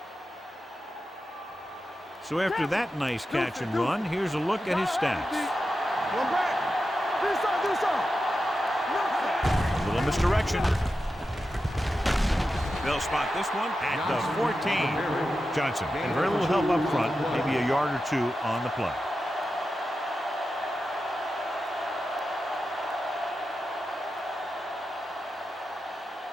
So after that nice catch and run, here's a look at his stats. One back. Do something. A little misdirection. They'll spot this one at the 14. Johnson, and very little help up front, maybe a yard or two on the play.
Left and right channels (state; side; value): normal; both; correlation 0.90